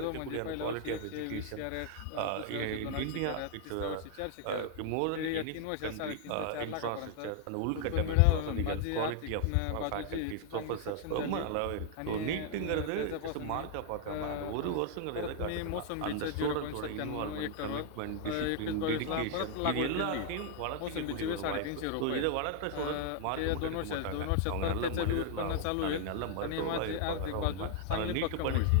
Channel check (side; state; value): both; different; correlation 0.00